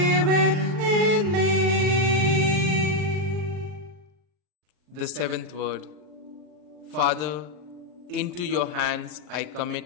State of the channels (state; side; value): late; left; 40 ms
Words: in me. The seventh word. Father, into your hands I